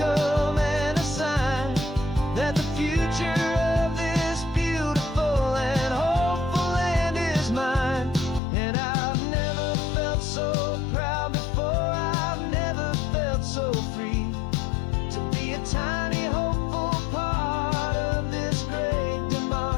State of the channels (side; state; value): right; drops out; at 8.4 s